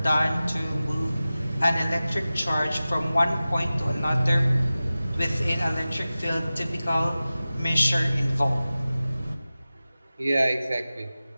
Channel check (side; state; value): both; inverted; correlation -0.96